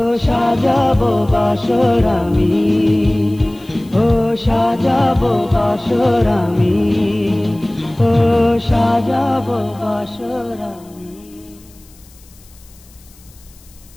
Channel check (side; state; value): left; noise; hiss, 27 dB below the sound